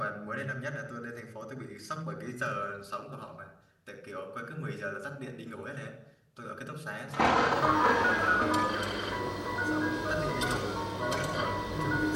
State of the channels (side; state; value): both; identical; correlation 1.00